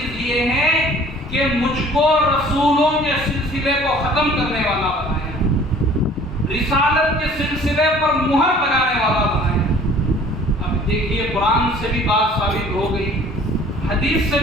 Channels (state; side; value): normal; both; correlation 0.51